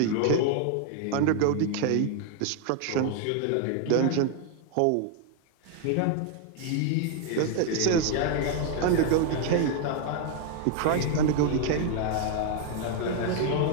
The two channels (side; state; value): both; different; correlation 0.00